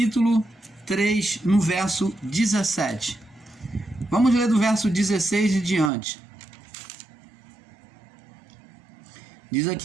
3, no verso 17. Vamos ler do verso 16 e diante. Diz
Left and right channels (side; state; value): left; drops out; at 5.9 s